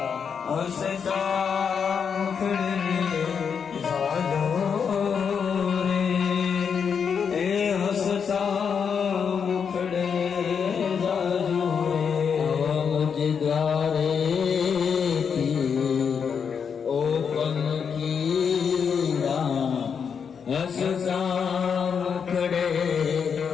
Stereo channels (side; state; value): right; quieter; 6.7 dB